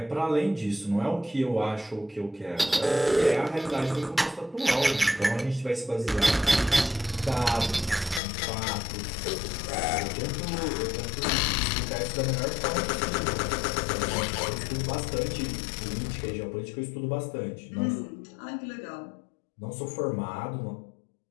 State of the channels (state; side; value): drops out; right; at 8.2 s